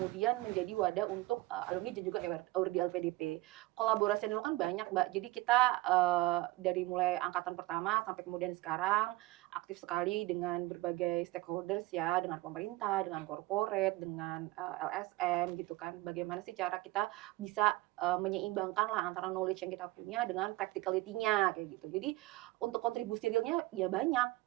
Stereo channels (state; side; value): quieter; left; 19.6 dB